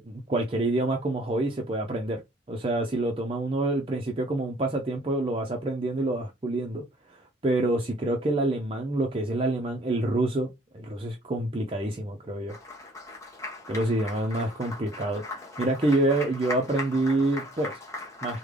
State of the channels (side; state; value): both; normal; correlation 0.58